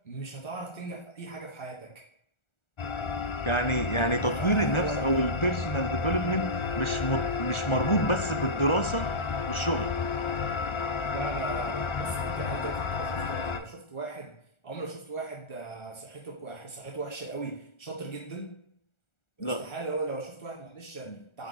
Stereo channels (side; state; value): right; late; 1.4 ms